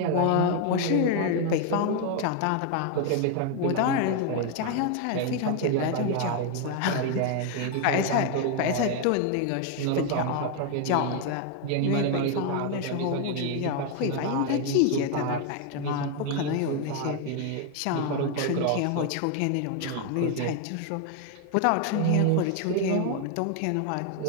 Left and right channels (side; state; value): both; different; correlation 0.01